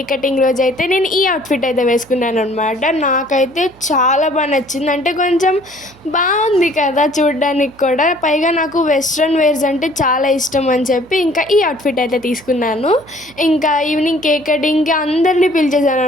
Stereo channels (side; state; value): right; noise; hum, 26 dB below the sound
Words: కటింగ్ రోజైతే నేను ఈ అవుట్‌ఫిట్ అయితే వేసుకున్నాననమాట. నాకైతే చాలా నచ్చింది. అంటే కొంచెం బాగుంది కదా చూడడానికి కూడా. పైగా నాకు వెస్ట్రన్ వేర్స్ అంటే చాలా ఇష్టం అని చెప్పి ఇంకా ఈ అవుట్‌ఫిట్ అయితే తీసుకున్నాను. ఇంకా ఈవినింగ్ కేక్ కటింగ్‌కి అందరిని